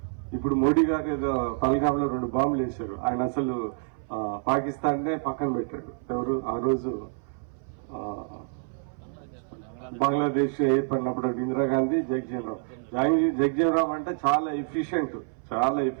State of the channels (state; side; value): silent; left; 59 dB below the other